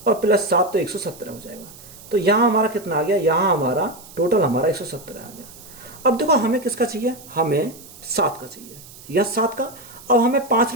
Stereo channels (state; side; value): noise; right; hiss, 19 dB below the sound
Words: और +7 तो 117 हो जाएगा। तो यहाँ हमारा कितना आ गया, यहाँ हमारा टोटल हमारा 117 आ गया। अब देखो हमें किसका चाहिए, हमें 7 का चाहिए, या 7 का। अब हमें 5